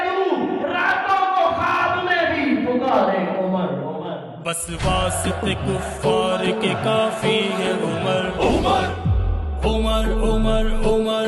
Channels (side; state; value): both; identical; correlation 1.00